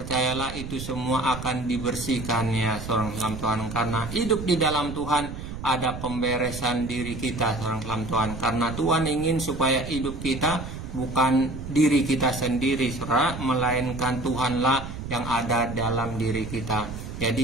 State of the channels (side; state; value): right; noise; rumble, 9 dB below the sound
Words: itu semua akan dibersihkan ya seorang Tuhan. Karena hidup di dalam Tuhan ada pemberesan diri kita seorang Tuhan. Karena Tuhan ingin supaya hidup kita bukan diri kita sendiri, saudara, melainkan Tuhanlah yang ada dalam diri kita.